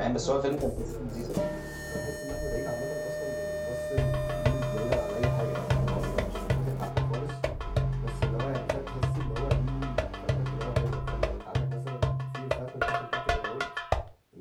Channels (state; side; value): identical; both; correlation 1.00